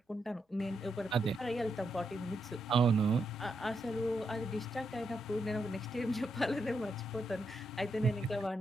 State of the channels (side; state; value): both; normal; correlation 0.82